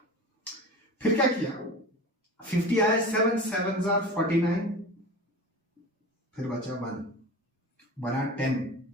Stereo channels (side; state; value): both; normal; correlation 0.33